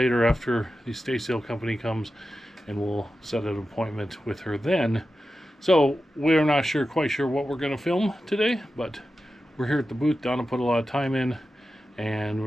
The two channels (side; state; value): both; normal; correlation 0.92